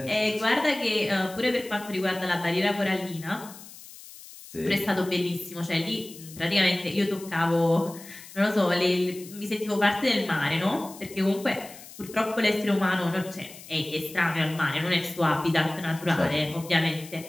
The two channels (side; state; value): left; noise; hiss, 17 dB below the sound